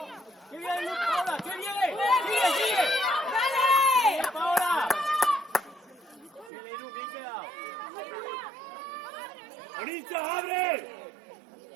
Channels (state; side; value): drops out; left; at 6.5 s